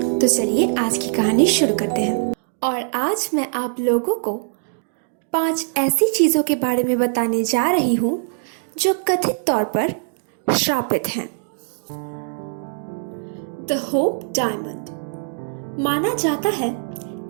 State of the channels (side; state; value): left; silent; digital silence